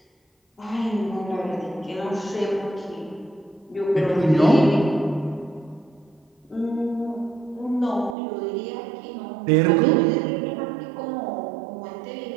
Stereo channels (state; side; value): drops out; left; at 8.2 s